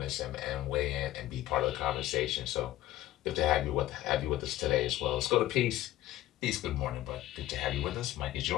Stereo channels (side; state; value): right; quieter; 14.9 dB